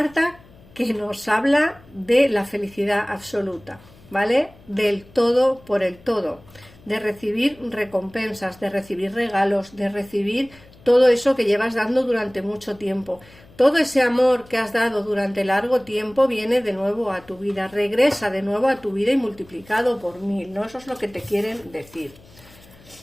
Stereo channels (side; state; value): left; noise; hum, 25 dB below the sound